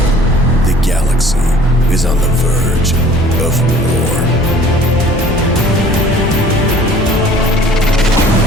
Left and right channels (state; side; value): normal; both; correlation 0.51